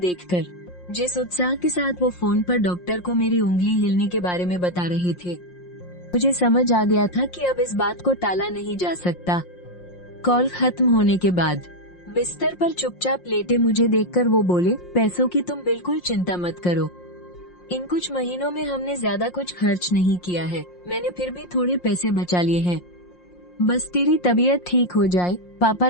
जिस उत्साह के साथ वो फोन पर डॉक्टर को मेरी उंगली हिलने के बारे में बता रहे थे, मुझे समझ आ गया था कि अब इस बात को टाला नहीं जा सकता। कॉल खत्म होने के बाद बिस्तर पर चुपचाप लेटे मुझे देखकर वो बोले, पैसों की तुम बिल्कुल चिंता मत करो। इन कुछ महीनों में हमने ज्यादा कुछ खर्च नहीं किया है। मैंने फिर भी थोड़े पैसे बचा लिए हैं। बस तेरी तबीयत ठीक हो जाए, पापा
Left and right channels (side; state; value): right; late; 5.6 ms